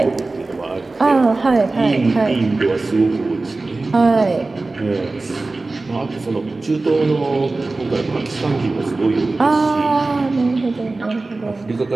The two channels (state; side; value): quieter; left; 3.4 dB